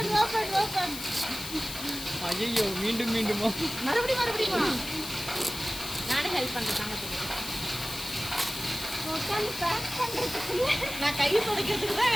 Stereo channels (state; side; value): noise; left; hiss, 9 dB below the sound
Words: ஓபன். ஐயோ மீண்டுமா மறுபடியும் நானே ஹெல்ப் பண்றேன் தங்கத்துக்கு. உட்கார்ந்து பேக் பண்றதுக்குள்ள நான் கை துடைக்கிறதுக்கு தான்